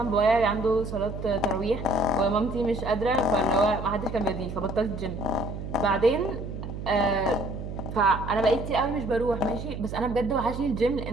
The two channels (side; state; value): right; noise; hum, 8 dB below the sound